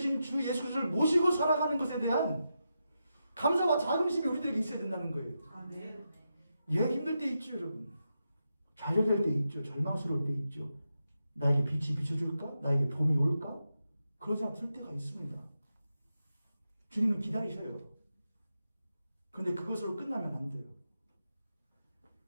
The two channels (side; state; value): both; inverted; correlation -0.87